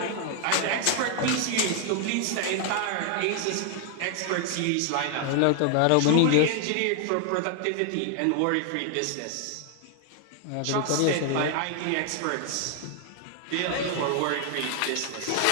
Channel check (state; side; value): different; both; correlation 0.00